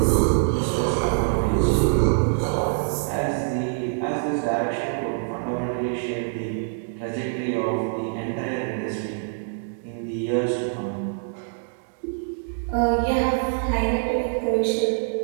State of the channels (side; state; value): left; silent; digital silence